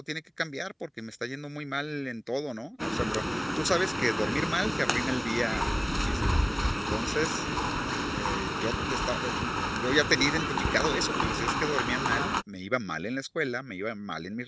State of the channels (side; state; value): both; identical; correlation 1.00